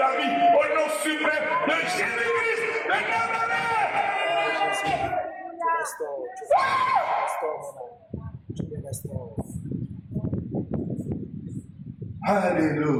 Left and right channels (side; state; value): both; identical; correlation 1.00